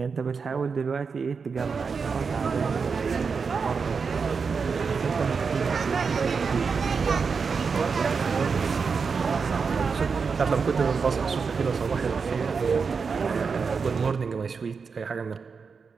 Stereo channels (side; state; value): left; quieter; 5.4 dB